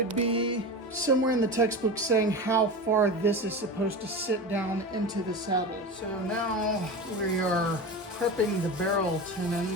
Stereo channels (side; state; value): both; normal; correlation 0.26